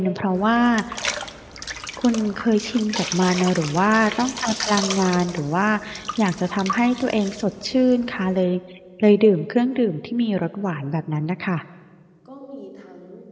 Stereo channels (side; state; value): both; identical; correlation 1.00